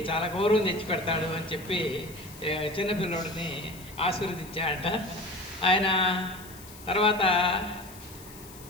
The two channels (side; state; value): left; noise; hiss, 18 dB below the sound